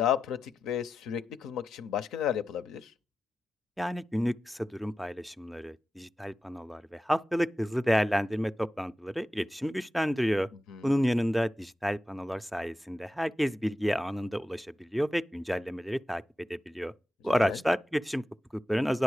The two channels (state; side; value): normal; both; correlation 0.92